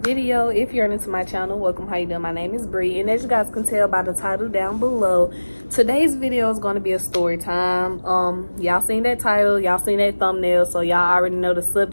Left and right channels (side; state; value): both; inverted; correlation -1.00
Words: If you're new to my channel, welcome. How you doing? My name is Bree, and as you guys can tell by the title down below, today's video is going to be a story time. Y'all seen that title, y'all seen that thumbnail, so y'all already know the